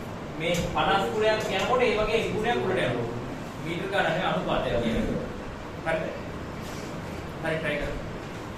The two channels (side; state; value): both; identical; correlation 1.00